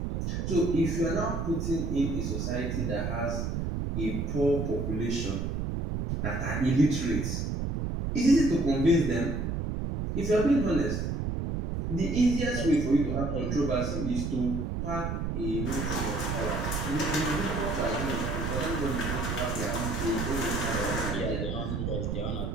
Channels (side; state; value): right; noise; rumble, 1 dB below the sound